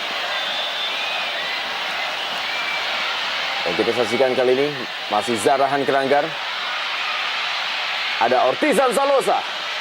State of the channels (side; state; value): both; identical; correlation 1.00